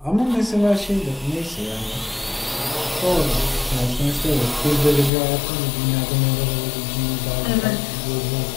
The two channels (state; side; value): drops out; right; at 5.1 s